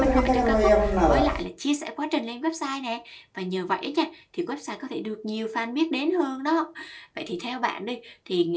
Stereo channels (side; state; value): both; identical; correlation 1.00